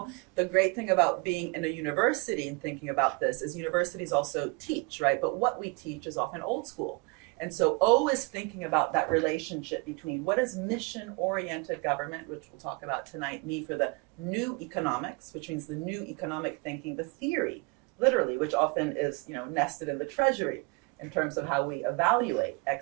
The great thing about being in a university and thinking about this is universities also teach, right? But what we teach is often old school. And so always thinking about that relationship between what does mission-oriented government, which we'll talk about tonight, mean for the new economics, which means the new economic thinking, the theory literally, which often is, nested in the treasury in terms of how we evaluate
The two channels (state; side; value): quieter; left; 29.6 dB